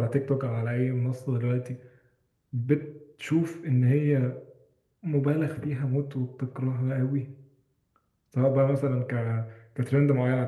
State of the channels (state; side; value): identical; both; correlation 1.00